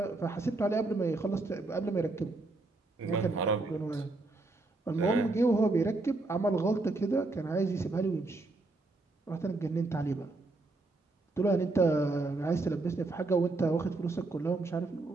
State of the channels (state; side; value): quieter; left; 3.2 dB